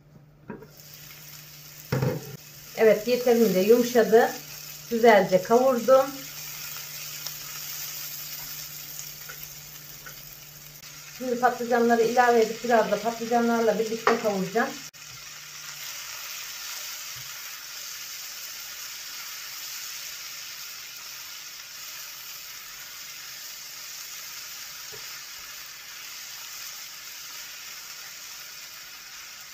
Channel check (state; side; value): identical; both; correlation 1.00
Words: Evet, yeterince yumuşadı. Güzelce kavurdum. Şimdi patlıcanları ilave edip biraz da patlıcanlarla birlikte kavuracağım.